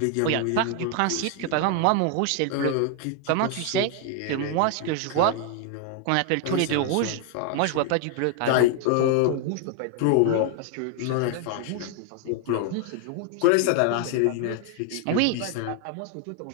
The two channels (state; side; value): different; both; correlation 0.00